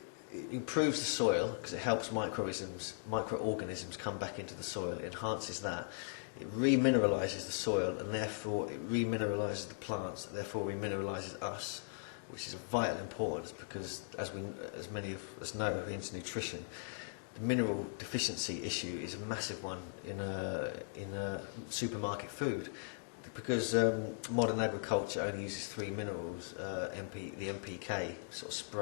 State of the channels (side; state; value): right; silent; digital silence